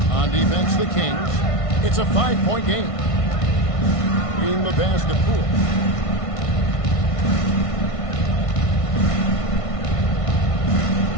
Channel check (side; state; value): right; late; 1.5 ms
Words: On defense, the Kings. It's a 5-point game. In the pass to Poole.